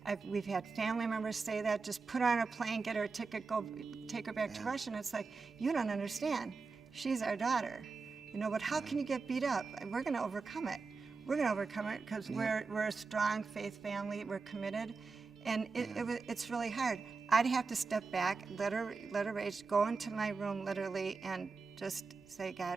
We've had family members say that, just put her on a plane, get her a ticket, go take her back to Russia. And it's like, you don't understand. She's our daughter. But how can you get beat up? We're going to overcome it. We're going to overcome it because we're a strong faith family. We're committed. And it's really hard. I'd have to step back, let her rage, go into my room literally, and just say,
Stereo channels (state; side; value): quieter; left; 4.5 dB